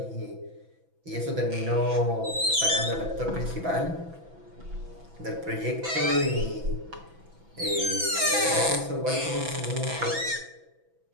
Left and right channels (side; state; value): left; late; 6.0 ms